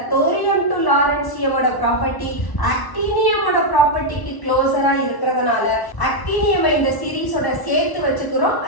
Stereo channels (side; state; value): right; late; 1.0 ms